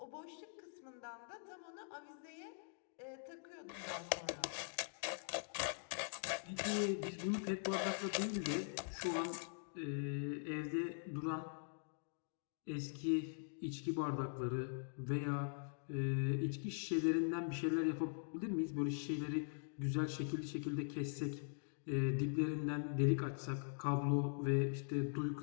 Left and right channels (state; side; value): silent; right; digital silence